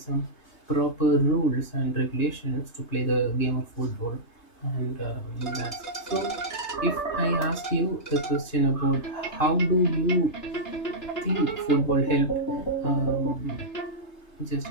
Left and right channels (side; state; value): right; late; 3.3 ms